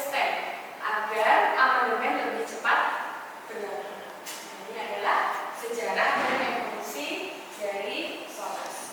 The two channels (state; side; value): identical; both; correlation 1.00